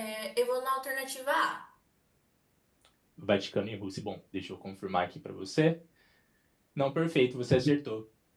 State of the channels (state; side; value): identical; both; correlation 1.00